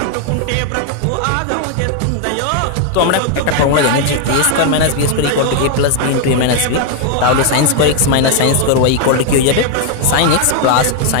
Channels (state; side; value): different; both; correlation 0.00